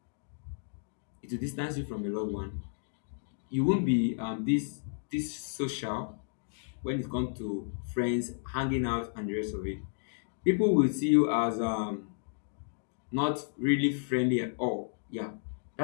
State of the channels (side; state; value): right; silent; digital silence